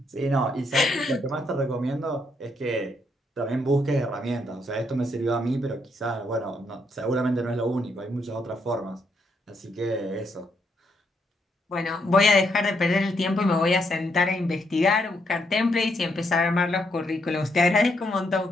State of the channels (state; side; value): normal; both; correlation 0.76